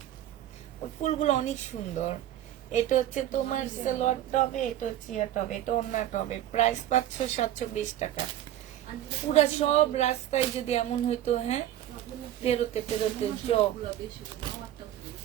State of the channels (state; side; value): quieter; left; 12.6 dB